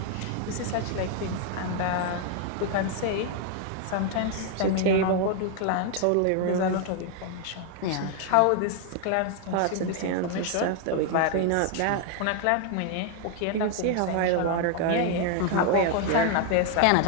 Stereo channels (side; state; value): both; different; correlation 0.00